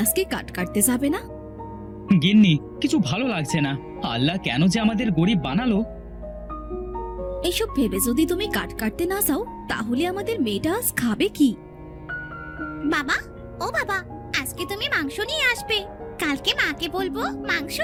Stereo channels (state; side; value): identical; both; correlation 1.00